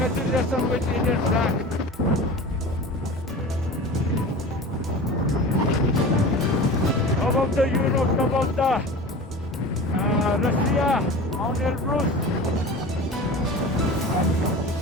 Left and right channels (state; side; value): normal; both; correlation 0.35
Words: with Indian flag. About the Europe, about the Russia, Mount Elbrus.